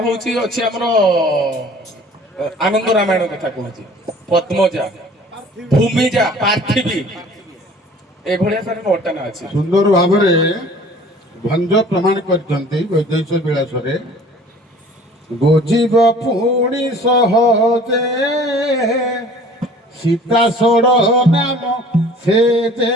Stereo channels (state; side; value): normal; both; correlation 0.49